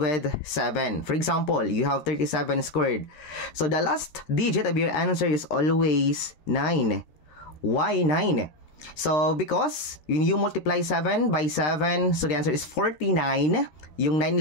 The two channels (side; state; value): right; late; 13 ms